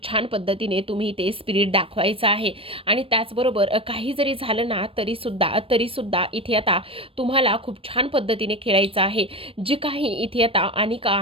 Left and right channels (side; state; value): left; late; 0.27 ms